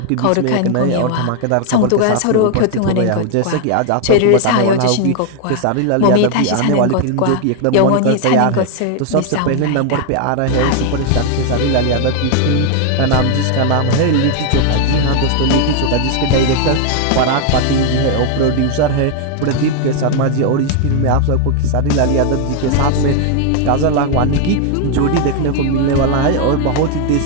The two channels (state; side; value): different; both; correlation 0.00